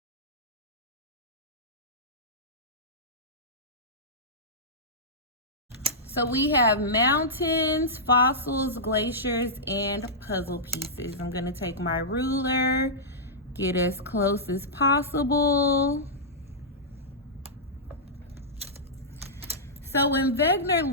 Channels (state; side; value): normal; both; correlation -0.12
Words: so we have mountains, fossils, glaciers, and puzzle pieces. I'm gonna take my ruler, get as close as possible. So when Wegener